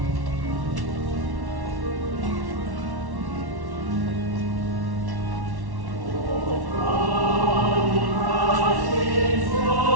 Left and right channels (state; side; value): late; left; 1.1 ms